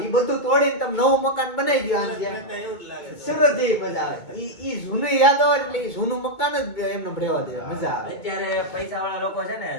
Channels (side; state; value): right; late; 2.2 ms